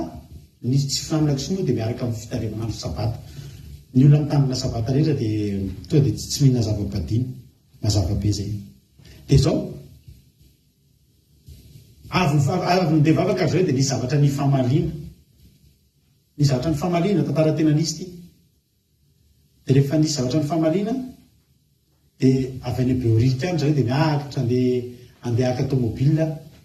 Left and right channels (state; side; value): identical; both; correlation 1.00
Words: nisy tsy fihinanana kisoa dia miaraka amin'ny fitarevanandro sabata ny olona mitandrina sabata rehetra dia tonga dia tsy mihina zava-badiny mazava be zay dia zao avy mindeha vavaka ary zareo dia nisy zavatra ny famaliana ny zavatra ny famaliana tantara tena nisy ty. De rehefa nisy zavatra ny famaliana de avy any Beorika any zareo de miakatra andeha aka automobile